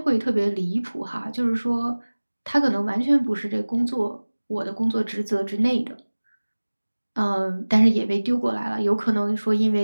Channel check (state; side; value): inverted; both; correlation -1.00